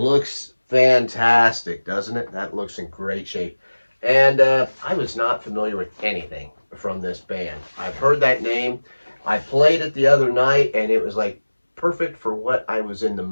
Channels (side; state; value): both; inverted; correlation -1.00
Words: fantastic, doesn't it? That looks in great shape. And I was not familiar with anything from this band. I've heard that name. I played it the other night, and it was like perfect for what I was in the